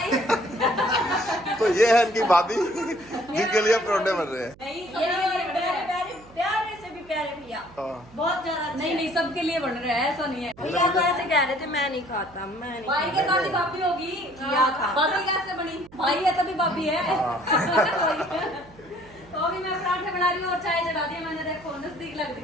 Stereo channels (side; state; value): right; noise; hum, 24 dB below the sound